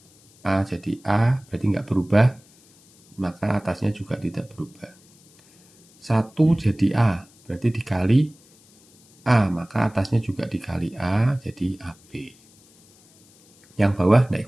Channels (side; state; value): left; noise; hiss, 29 dB below the sound